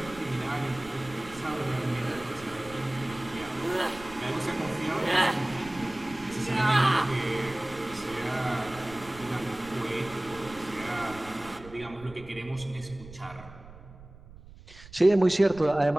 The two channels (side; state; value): right; noise; rumble, 18 dB below the sound